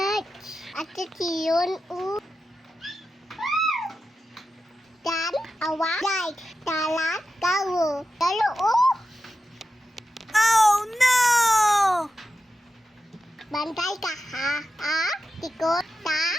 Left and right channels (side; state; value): both; normal; correlation 0.91